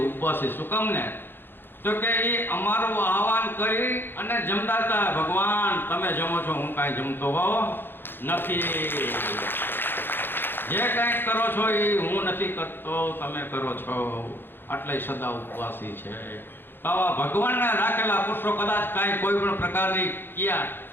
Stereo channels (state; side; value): late; right; 0.10 ms